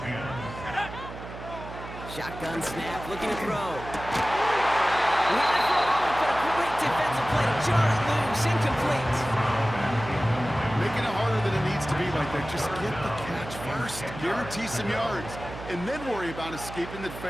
Shotgun snap, looking to throw. He had it for a moment, but a great defensive play to jar it loose, incomplete. Making it harder than it needs to be like that. Just get the catch first. Guarantee some yards. And then worry about escaping the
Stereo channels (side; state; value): right; noise; hum, 12 dB below the sound